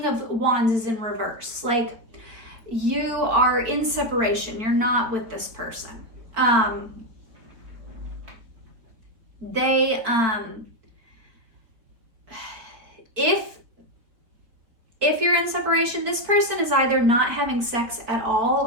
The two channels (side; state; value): left; late; 4.2 ms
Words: of Wands is in reverse. Like, you are in separation. You're not with this person. If you're in separation, this person is either not having sex at all,